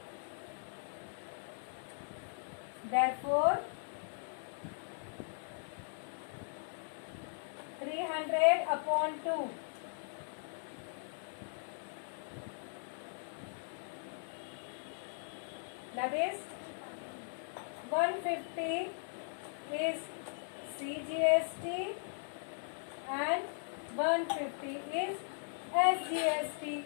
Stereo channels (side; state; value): right; silent; digital silence